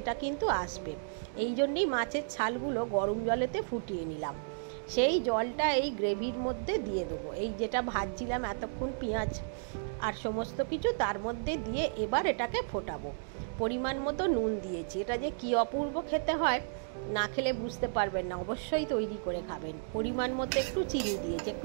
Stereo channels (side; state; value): left; silent; digital silence